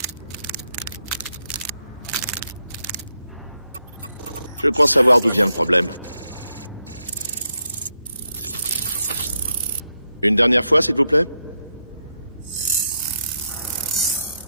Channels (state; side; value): inverted; both; correlation -0.82